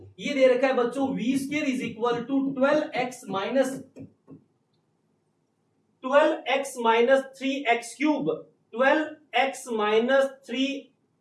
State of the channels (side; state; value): both; identical; correlation 1.00